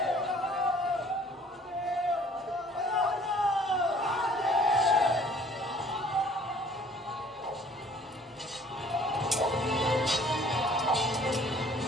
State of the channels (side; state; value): both; normal; correlation 0.55